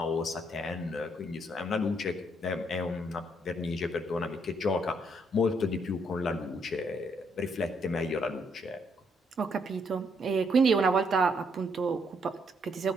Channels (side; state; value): both; normal; correlation 0.72